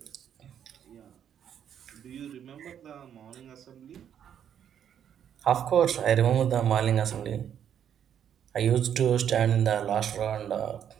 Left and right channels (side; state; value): left; quieter; 9.1 dB